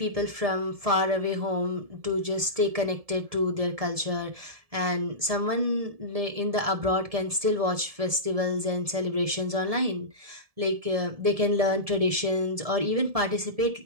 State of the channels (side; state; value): left; late; 1.7 ms